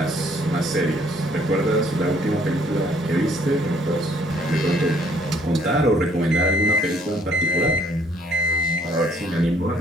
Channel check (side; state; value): both; normal; correlation 0.63